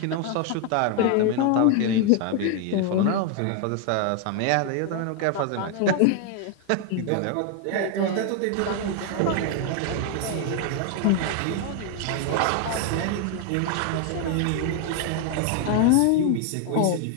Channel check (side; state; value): both; different; correlation 0.00